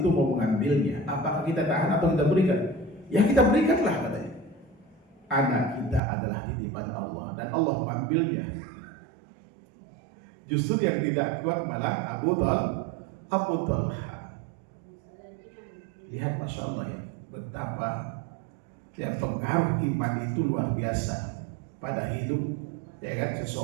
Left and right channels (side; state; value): left; drops out; at 6.0 s